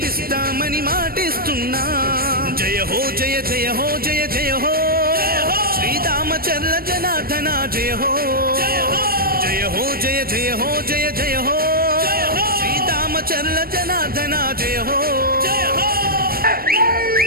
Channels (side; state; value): left; late; 0.43 ms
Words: మాటిస్తున్నాం. జయ హో జయ జయ హో జయ జయ హో శ్రీరామచంద్ర జనార్దన జయ హో. జయ హో జయ జయ హో జయ జయ హో శ్రీరామచంద్ర జనార్దన జయ హో.